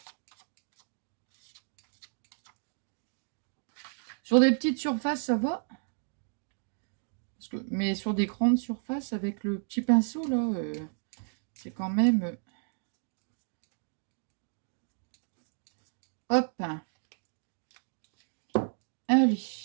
Sur des petites surfaces, ça va. Parce que, mais sur des grandes surfaces, avec le petit pinceau, là, c'est quand même... Hop. Allez.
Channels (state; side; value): silent; left; 56 dB below the other